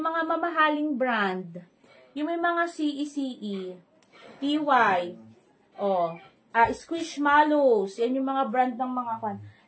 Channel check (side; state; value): both; identical; correlation 1.00